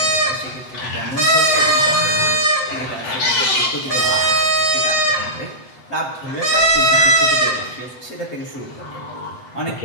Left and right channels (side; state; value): right; late; 7.9 ms